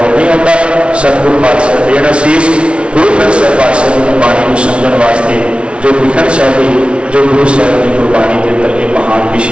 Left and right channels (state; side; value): late; left; 0.059 ms